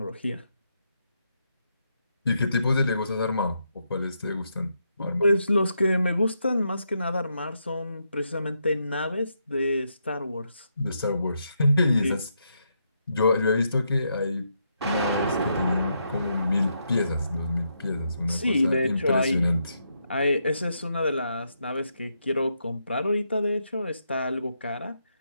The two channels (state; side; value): inverted; both; correlation -0.80